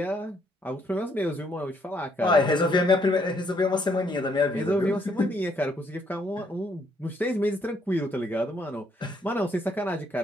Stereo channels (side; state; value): both; normal; correlation 0.70